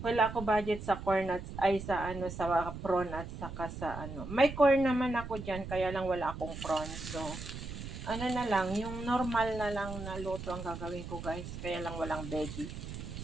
ako budget sa corn at sa prawn at saka sa May corn naman ako diyan kaya lang wala akong prawn. So na lang, yung normal na lang na luto ang gagawin ko guys. Kaya lang walang veggie.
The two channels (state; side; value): noise; right; rumble, 9 dB below the sound